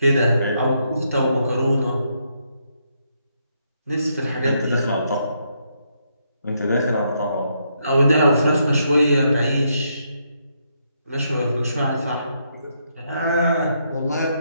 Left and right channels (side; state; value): both; inverted; correlation -0.77